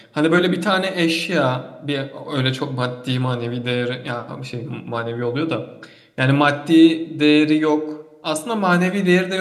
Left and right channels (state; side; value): identical; both; correlation 1.00